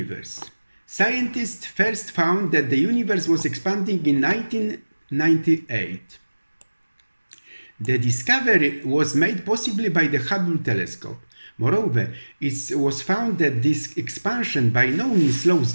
Scientists first found that the universe was expanding in 1998. The discovery was made possibly by the Hubble telescope. Moreover, it was found that this expansion by no means slows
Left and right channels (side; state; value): both; inverted; correlation -1.00